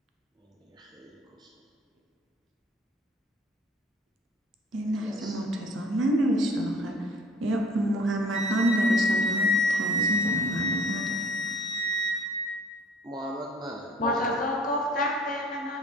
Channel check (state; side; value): normal; both; correlation 0.52